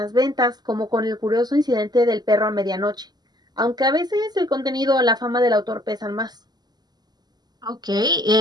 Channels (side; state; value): left; late; 0.20 ms